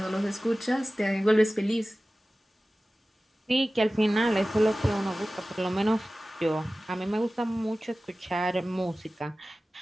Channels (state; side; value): normal; both; correlation 0.96